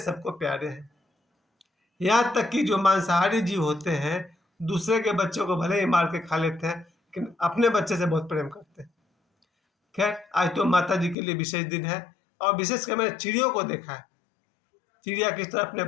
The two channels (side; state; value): right; drops out; at 11.2 s